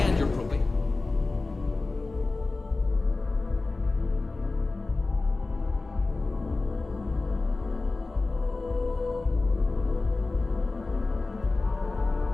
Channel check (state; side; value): quieter; right; 3.5 dB